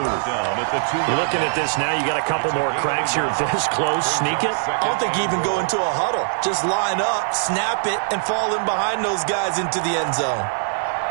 Looking at this now, you got a couple more cracks here. This close, sneak it. I don't think you even go into a huddle. Just line up, snap it, and fall in behind those guys into the end zone.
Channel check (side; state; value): left; silent; digital silence